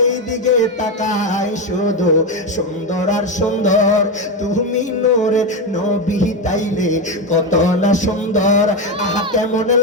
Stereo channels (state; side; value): normal; both; correlation 0.12